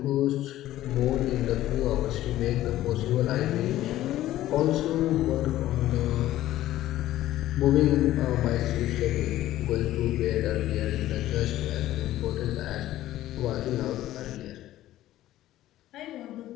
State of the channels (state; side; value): quieter; right; 14.3 dB